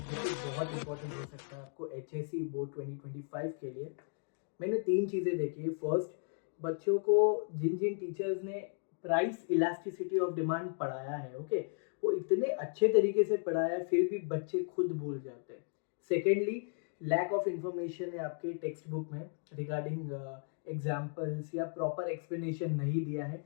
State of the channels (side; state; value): right; silent; 54 dB below the other